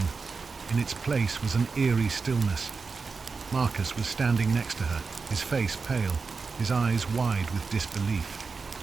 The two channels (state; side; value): quieter; left; 4.6 dB